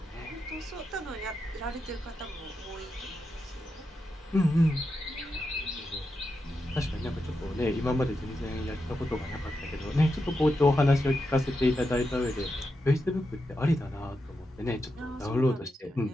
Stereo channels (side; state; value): both; normal; correlation 0.87